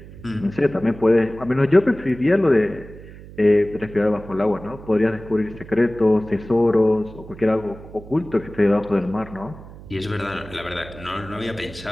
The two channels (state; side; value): noise; right; hum, 17 dB below the sound